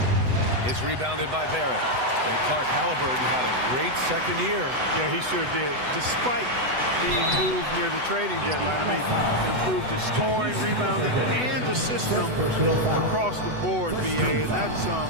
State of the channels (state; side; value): late; left; 8.0 ms